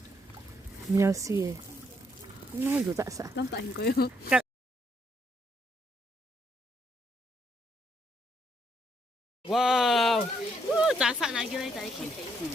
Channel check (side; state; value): both; normal; correlation 0.73